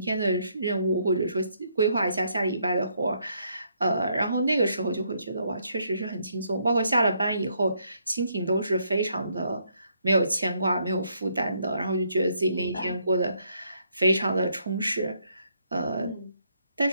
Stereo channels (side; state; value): both; inverted; correlation -0.73